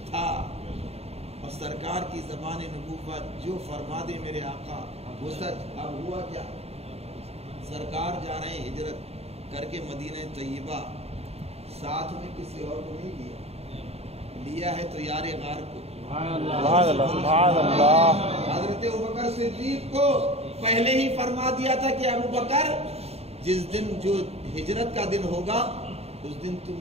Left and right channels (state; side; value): late; left; 0.30 ms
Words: تھا۔ اور سرکار کی زبان نبوت جو فرما دے میرے آقا وہ سچ۔ اب ہوا کیا؟ سرکار جا رہے ہیں ہجرت کر کے مدینہ طیبہ، ساتھ میں کسی اور کو نہیں لیا ہے تو یار غار کو، حضرت ابوبکر صدیق کو پہلے ہی فرما دیا تھا کہ ابوبکر جس دن جو ہجرت کا دن ہوگا اس دن تم